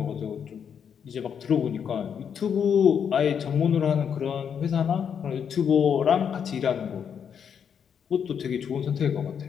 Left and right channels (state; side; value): quieter; right; 7.6 dB